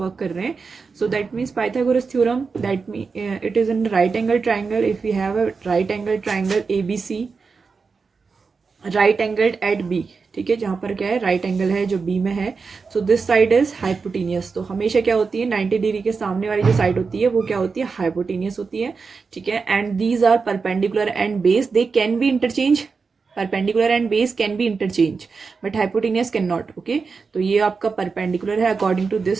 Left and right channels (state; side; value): quieter; left; 4.9 dB